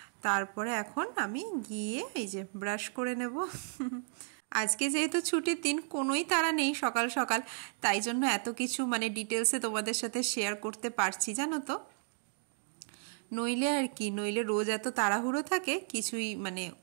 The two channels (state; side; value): silent; left; 55 dB below the other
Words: তারপরে এখন আমি গিয়ে এই যে ব্রাশ করে নেব। আজকে যেহেতু ছুটির দিন, কোনোই তাড়া নেই সকাল সকাল, তাই জন্য এত কিছু ডিটেলসে তোমাদের সাথে শেয়ার করতে পারছি, জানো তো। নইলে রোজ এত তাড়াহুড়ো থাকে, কিছুই